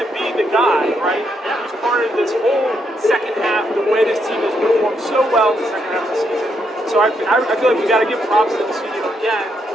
be the guy, right? He's part of this whole second half, the way this team has performed so well in the second half of the season. So I feel like we got to give props to Ilsinho again,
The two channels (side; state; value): both; normal; correlation 0.77